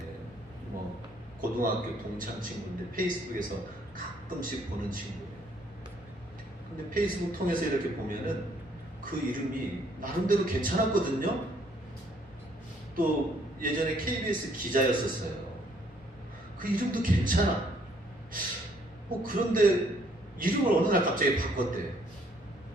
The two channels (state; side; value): normal; both; correlation 0.65